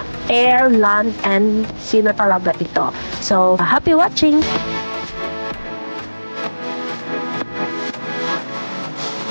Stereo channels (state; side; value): inverted; both; correlation -1.00